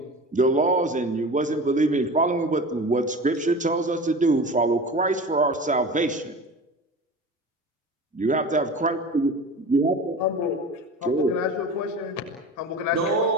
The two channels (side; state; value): both; normal; correlation 0.34